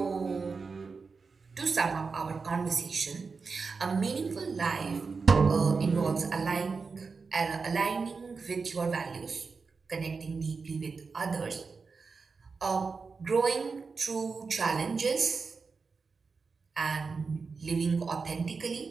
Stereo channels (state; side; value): quieter; left; 4.7 dB